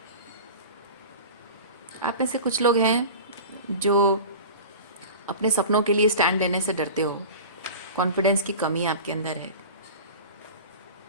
आप में से कुछ लोग हैं जो अपने सपनों के लिए स्टैंड लेने से डरते हो, कॉन्फिडेंस की कमी आपके अंदर है।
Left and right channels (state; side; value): inverted; both; correlation -0.35